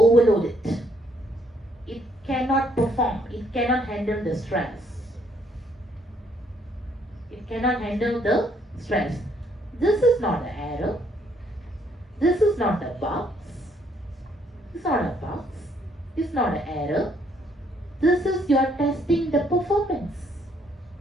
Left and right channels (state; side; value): normal; both; correlation 0.68